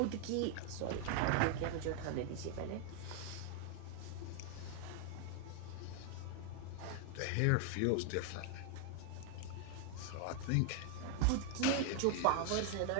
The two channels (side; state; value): both; different; correlation 0.00